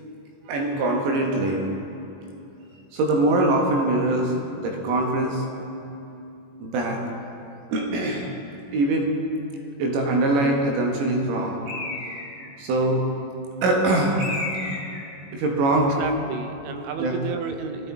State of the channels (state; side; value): late; left; 21 ms